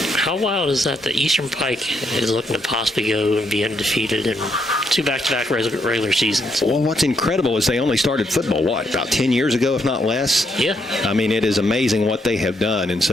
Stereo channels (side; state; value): both; normal; correlation 0.76